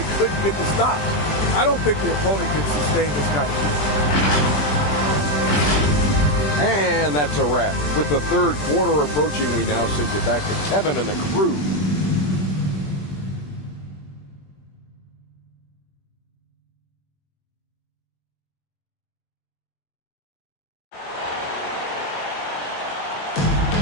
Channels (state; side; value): late; right; 20 ms